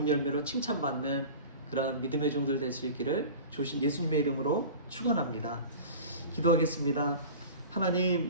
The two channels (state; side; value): inverted; both; correlation -0.37